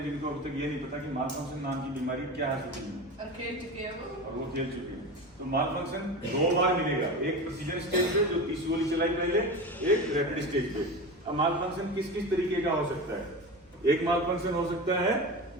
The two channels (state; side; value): normal; both; correlation 0.27